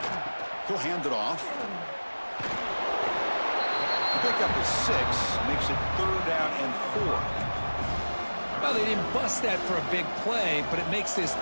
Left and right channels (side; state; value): both; inverted; correlation -1.00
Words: He'll hand it off. The pickup is 6, makes it 3rd down and 4. Well, they didn't bust that for a big play, but it makes this